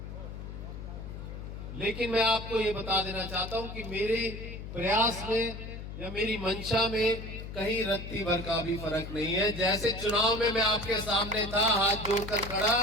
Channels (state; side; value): noise; left; hum, 9 dB below the sound